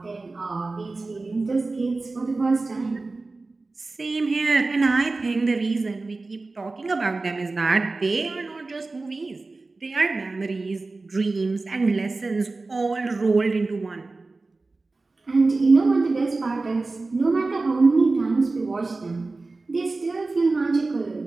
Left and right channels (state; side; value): quieter; left; 3.5 dB